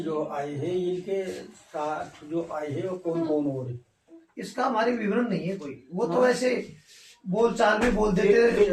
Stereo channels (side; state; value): both; identical; correlation 1.00